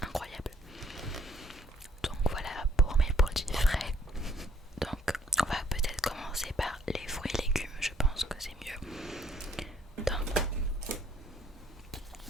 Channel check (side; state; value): both; normal; correlation 0.64